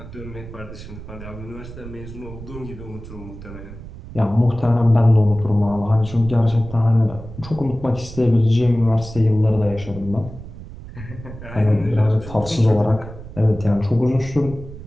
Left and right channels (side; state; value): right; noise; rumble, 14 dB below the sound